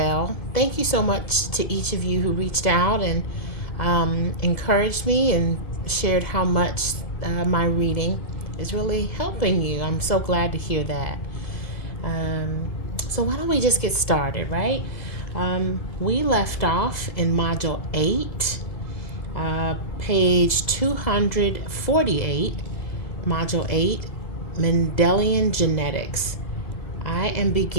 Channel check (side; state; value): right; late; 2.1 ms